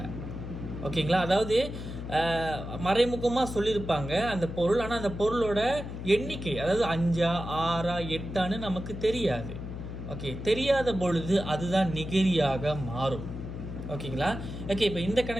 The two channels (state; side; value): noise; left; hum, 8 dB below the sound